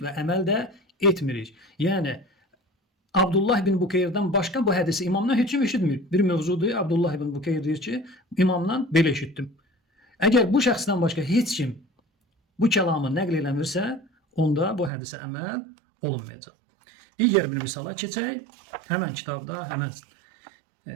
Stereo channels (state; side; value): drops out; left; at 14.9 s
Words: və əməl də etmirik. Yəni, Abdullah ibn Bukeyrdən başqa bu hədisi imamdan heç kim eşitmir. Bir mövzudur, Abdullah ibn Bukeyr deyir ki, imamdan belə eşitdim. Əgər bu şəxsdən başqa heç kim bu kəlamı nəql eləmirsə, onda bu hədisə əməl olunmayacaq. Digər bir misala keçək. Həmən kitabda, həmən